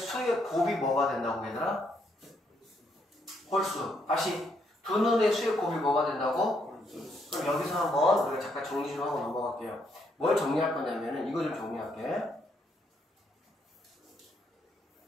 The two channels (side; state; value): both; normal; correlation 0.74